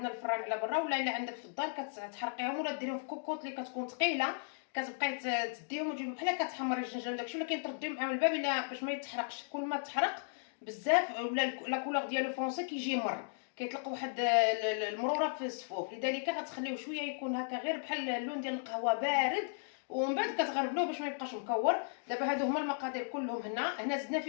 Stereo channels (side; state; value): right; silent; digital silence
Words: الفران على برا ولا الا عندك في الدار كتحرقيهم ولا ديريهم في كوكوط اللي كتكون ثقيله. كتبقاي تديهم وتجيبهم بحال كتحمري الجنجان داكشي ولكن ترديهم معاهم الباب الا باش ما يتحرقش. كل ما تحرق بزاف ولا لا كولور ديالو فونسي كيجي مر. كيطلق واحد المروره في الصفوف، لذلك غتخليوه شويه يكون هكا غير بحال اللون ديال القهوه بارد، ومن بعد كتغربلوه باش ما يبقاش مكور. دابا هادو هما المقادير كلهم. هنا زدنا